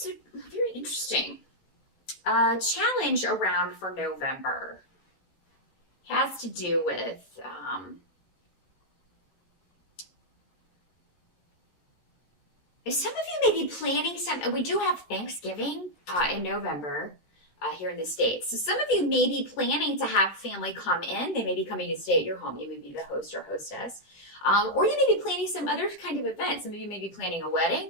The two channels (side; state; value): right; late; 13 ms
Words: very interesting. Challenge around for November has to do with some of you may be planning some. We do have Thanksgiving in November here in the States. So some of you may be planning to have family come in. They may be coming to stay at your home. You may be the host or hostess. Or you may be planning some other kind of event. Some of you may be planning a wedding.